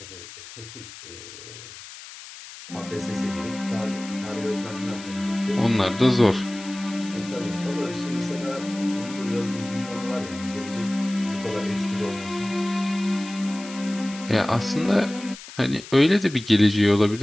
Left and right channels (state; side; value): noise; left; hiss, 15 dB below the sound